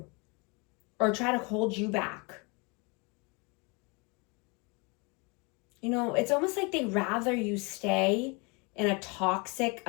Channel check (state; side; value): quieter; right; 30.3 dB